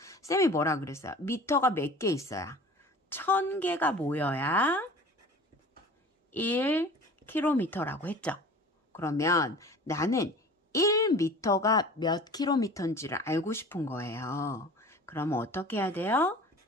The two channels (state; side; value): normal; both; correlation 0.42